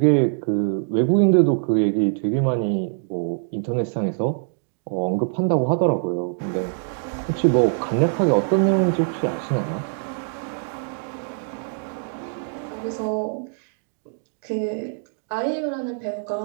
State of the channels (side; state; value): left; silent; digital silence